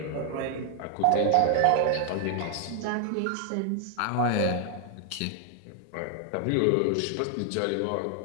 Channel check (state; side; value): different; both; correlation 0.00